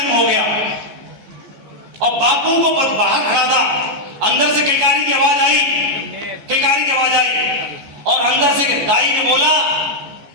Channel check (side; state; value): left; late; 14 ms